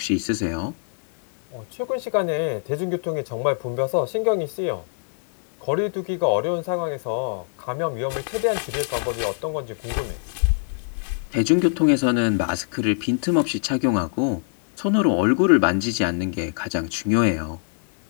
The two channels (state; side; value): silent; right; 63 dB below the other